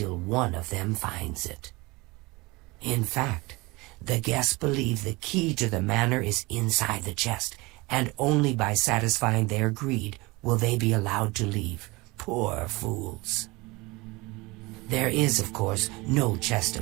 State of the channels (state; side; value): quieter; left; 23.6 dB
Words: one of them finds it. In fact, the guests believe the key to the manor is inside the chest, and only by satisfying their greed will they be allowed to leave. Poor fools. There is, of course, no chest